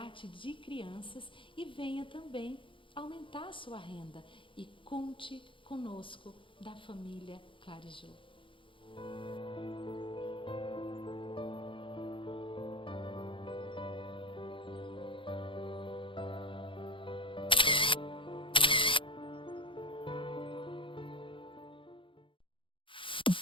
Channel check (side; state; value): right; late; 0.25 ms